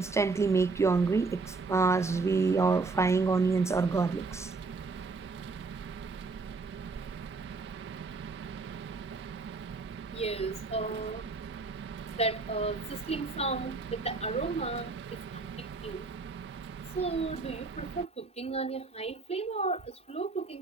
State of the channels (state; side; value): quieter; left; 3.9 dB